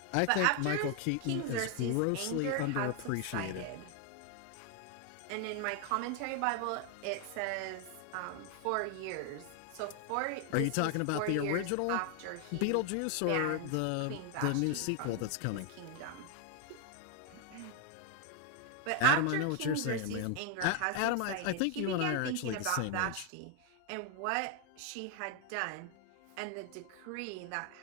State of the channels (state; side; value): different; both; correlation 0.01